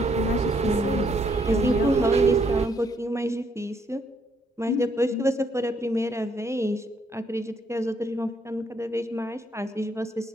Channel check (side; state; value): both; normal; correlation 0.71